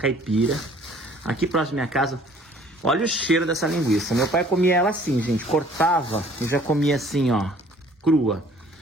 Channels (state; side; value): normal; both; correlation 0.55